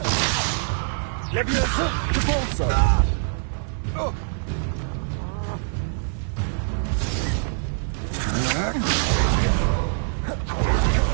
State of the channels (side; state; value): left; silent; 63 dB below the other